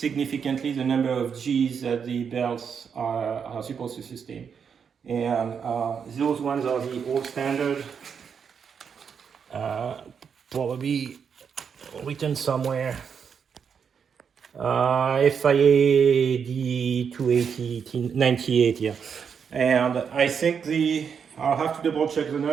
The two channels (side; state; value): left; quieter; 6.8 dB